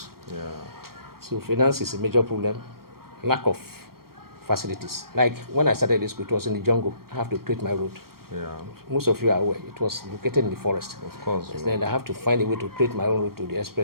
Yeah. So finance is a major problem. Lack of facilities. Like when I started this school, it was in the jungle. I have to create my road. Yeah. Most of you are aware. It was located in the forest. Of course. Then I have to find a way to create my own route to the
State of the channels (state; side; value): late; left; 0.93 ms